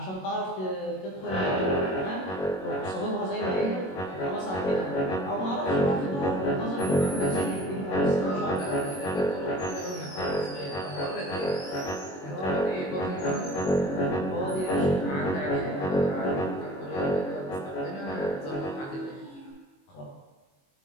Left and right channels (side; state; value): right; late; 21 ms